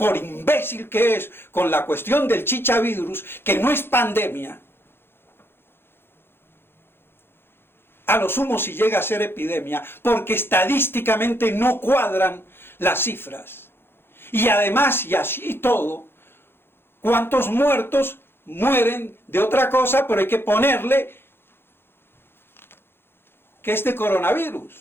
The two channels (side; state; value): right; late; 0.11 ms